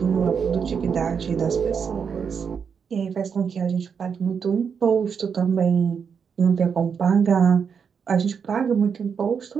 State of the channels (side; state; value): left; quieter; 6.6 dB